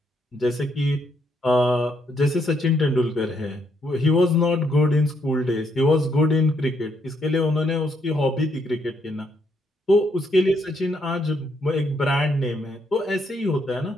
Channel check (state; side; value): normal; both; correlation 0.74